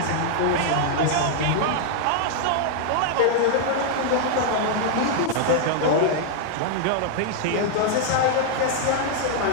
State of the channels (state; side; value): different; both; correlation -0.01